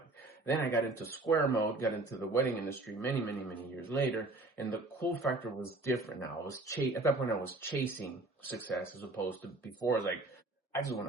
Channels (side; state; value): left; quieter; 3.0 dB